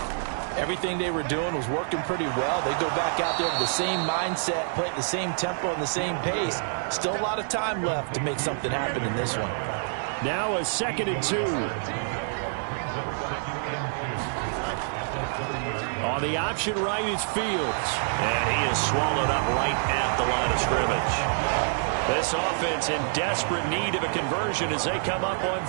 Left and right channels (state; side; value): silent; left; 60 dB below the other